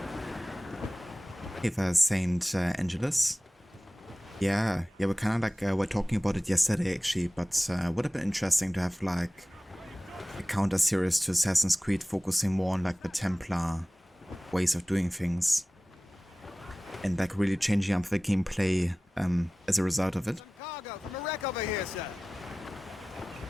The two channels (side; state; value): both; normal; correlation 0.97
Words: Okay, there's St. Angelus. Yeah, we're kind of like, we're talking about it yesterday actually, but would have been interesting to have like a counter series to Assassin's Creed focusing more on like the Templar ways of doing things. And like really changing up the gameplay as a result of it. Cargo from a wreck over here, sir.